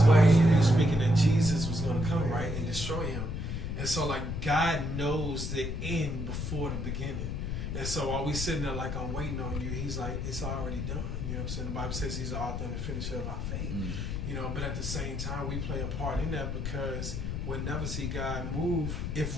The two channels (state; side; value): noise; left; rumble, 3 dB below the sound